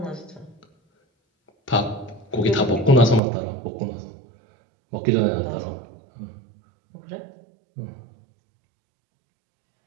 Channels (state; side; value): drops out; left; at 3.2 s